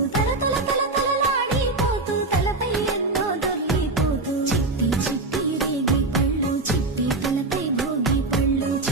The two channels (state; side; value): quieter; left; 3.2 dB